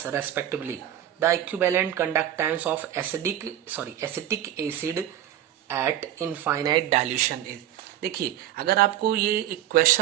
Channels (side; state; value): left; quieter; 11.9 dB